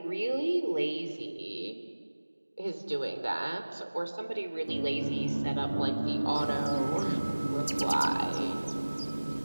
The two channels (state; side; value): inverted; both; correlation -1.00